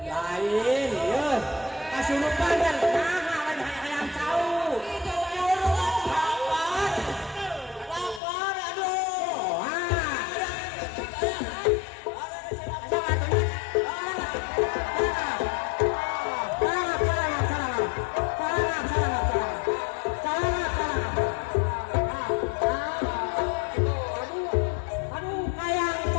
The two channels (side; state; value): right; drops out; at 8.2 s